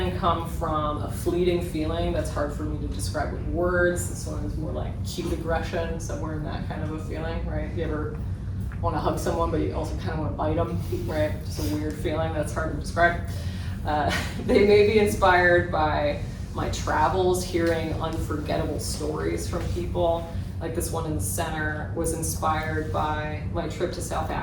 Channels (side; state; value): both; identical; correlation 1.00